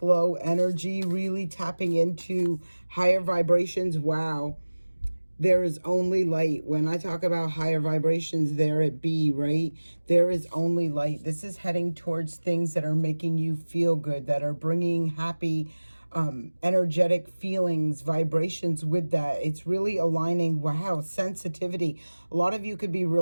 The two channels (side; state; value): both; inverted; correlation -1.00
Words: energy, really tapping into higher vibrations. Wow. There is only light. When I talk about higher vibrations, there it be, right? There is only light. This is heading towards things that are making you feel good, that are bringing happy, energetic feelings, vibrations with that. It's really aligning. Wow, sensitivity. A lot of you could be